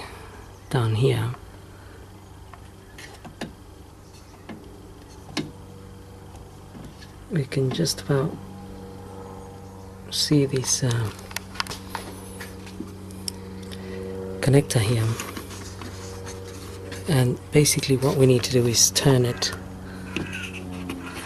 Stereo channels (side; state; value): both; identical; correlation 1.00